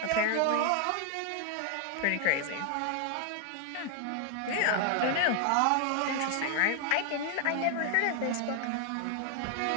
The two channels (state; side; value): different; both; correlation 0.00